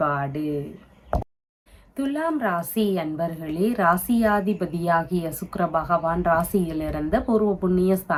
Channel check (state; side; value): identical; both; correlation 1.00